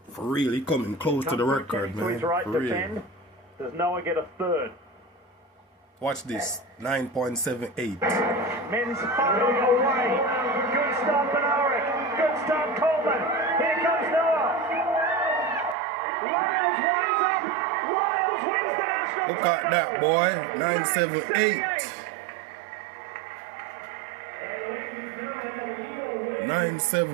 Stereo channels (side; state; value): left; drops out; at 15.8 s